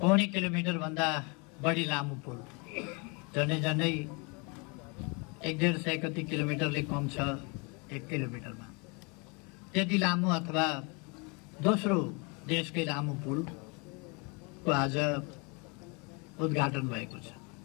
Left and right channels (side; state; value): right; quieter; 31.3 dB